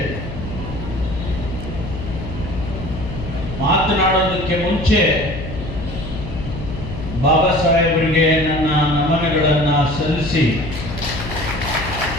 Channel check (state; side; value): noise; left; hum, 8 dB below the sound